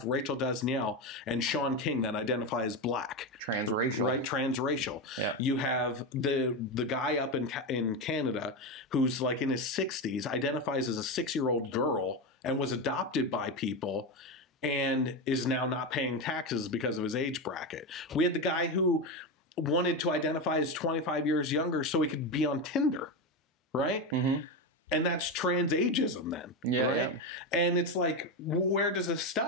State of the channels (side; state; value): both; normal; correlation 0.14